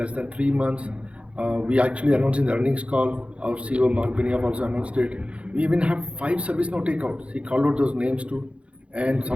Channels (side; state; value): left; late; 0.061 ms